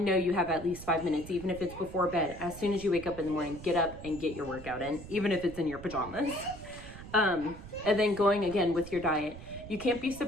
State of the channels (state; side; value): noise; right; rumble, 14 dB below the sound